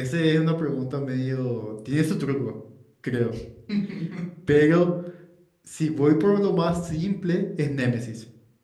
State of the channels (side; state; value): both; identical; correlation 1.00